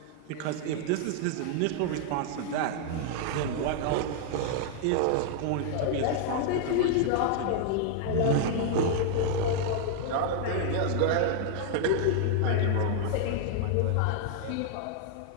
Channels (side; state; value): both; different; correlation 0.00